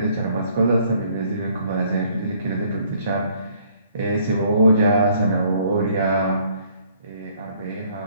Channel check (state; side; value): inverted; both; correlation -0.63